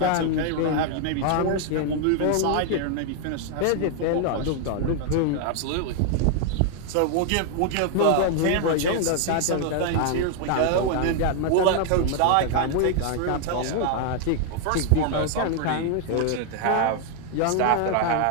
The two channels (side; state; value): both; different; correlation 0.00